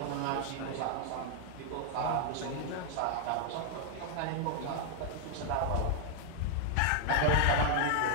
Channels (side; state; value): both; different; correlation 0.00